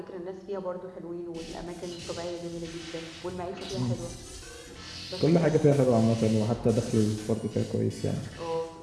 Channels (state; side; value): identical; both; correlation 1.00